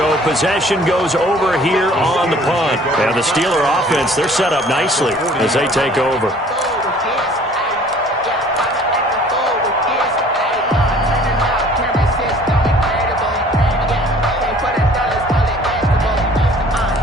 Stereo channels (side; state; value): both; normal; correlation 0.53